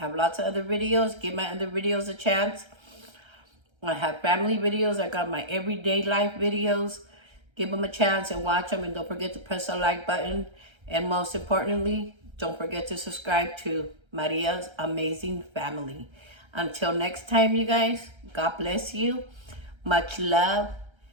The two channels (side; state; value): left; late; 1.3 ms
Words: lots of other videos. Give my other videos a chance. I have family videos. I got my everyday life videos. Give them a chance and watch them, and don't forget to press the like button. And most importantly, don't forget to subscribe to Maria's Amazing Family. Until next time, you guys, God bless you. Much love.